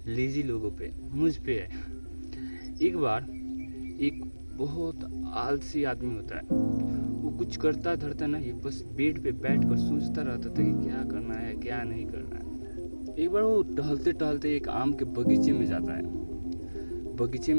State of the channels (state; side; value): inverted; both; correlation -1.00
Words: लेजी लोगों पे, मुझ पे है। एक बार एक बहुत आलसी आदमी होता है। वो कुछ करता धरता नहीं, बस बेड पे बैठकर सोचता रहता था कि क्या करना है, क्या नहीं करना है। एक बार वो टहलते टहलते एक आम के बगीचे में जाता है। बगीचे